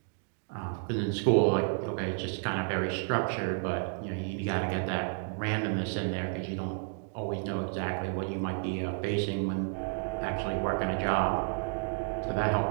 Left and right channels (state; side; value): silent; left; 57 dB below the other